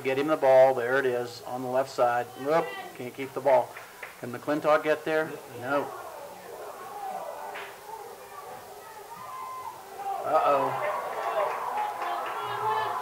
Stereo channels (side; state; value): both; identical; correlation 1.00